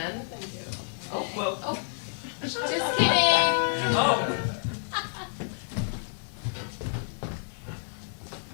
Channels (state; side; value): silent; right; 59 dB below the other